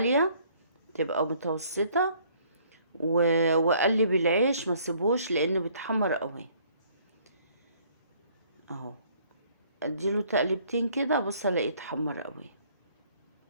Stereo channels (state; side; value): inverted; both; correlation -0.61